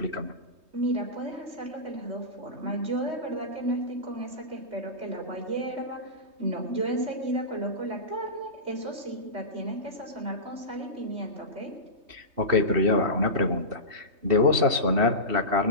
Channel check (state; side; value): late; left; 3.2 ms